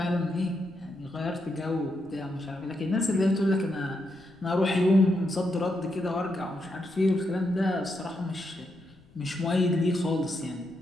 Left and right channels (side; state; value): left; noise; rumble, 27 dB below the sound